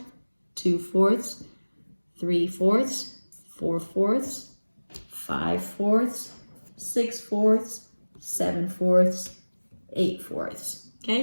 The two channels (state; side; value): inverted; both; correlation -1.00